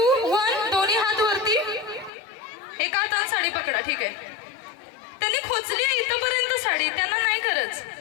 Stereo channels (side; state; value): right; drops out; at 2.1 s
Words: 1 दोन्ही हात वरती. एका हाताने साडी पकडा. ठीक आहे. त्यांनी खोचली आहे इथपर्यंत साडी, त्यांना नाही करत.